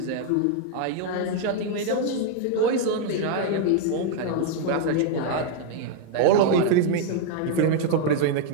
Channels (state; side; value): different; both; correlation 0.00